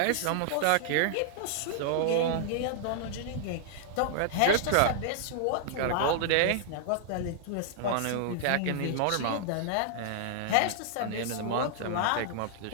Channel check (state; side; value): different; both; correlation -0.01